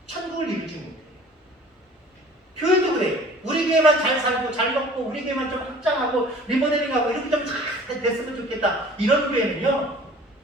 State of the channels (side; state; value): both; normal; correlation 0.48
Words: 천국을 이루지 못해요. 교회도 그래요. 우리 교회만 잘 살고 잘 먹고 우리 교회만 좀 확장하고 리모델링하고 이렇게 좀 잘 됐으면 좋겠다, 이런 교회는요,